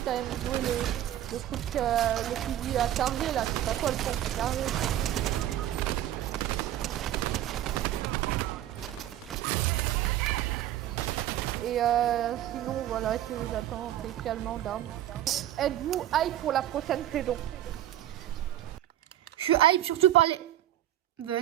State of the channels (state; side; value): quieter; left; 12.7 dB